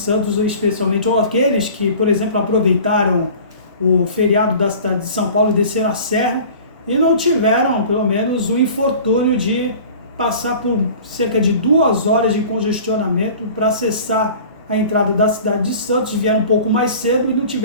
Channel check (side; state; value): both; inverted; correlation -0.43